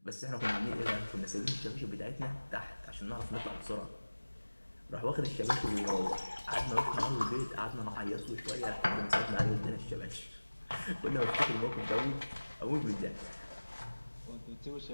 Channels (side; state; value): both; inverted; correlation -1.00